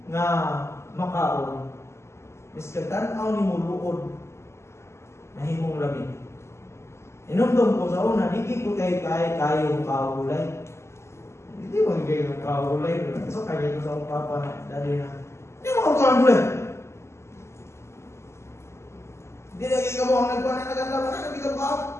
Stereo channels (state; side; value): late; right; 0.13 ms